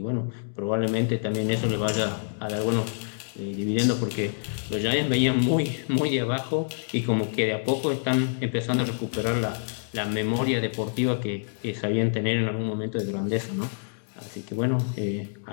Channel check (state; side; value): silent; right; digital silence